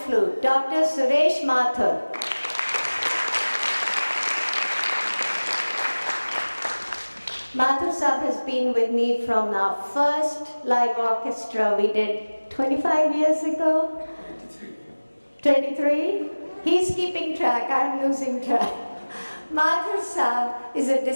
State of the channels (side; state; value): both; inverted; correlation -1.00